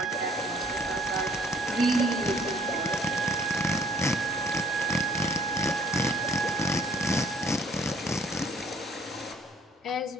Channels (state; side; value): normal; both; correlation 0.58